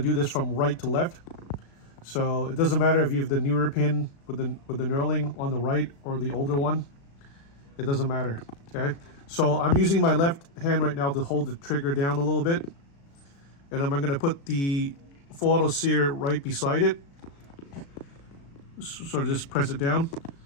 this from right to left. So it doesn't matter if you have the newer pin with the knurling on the right or the older one. It doesn't matter. Okay. So I'm using my left hand right now to hold the trigger down a little bit, and I'm gonna put the full auto sear right beside it. Sort of just press it down.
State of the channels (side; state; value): right; late; 36 ms